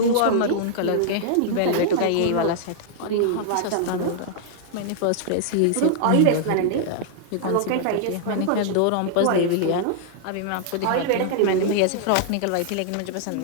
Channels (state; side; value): different; both; correlation -0.01